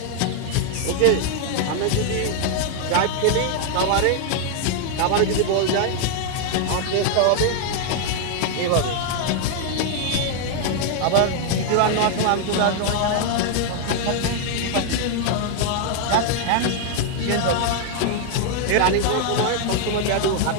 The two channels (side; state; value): both; different; correlation 0.00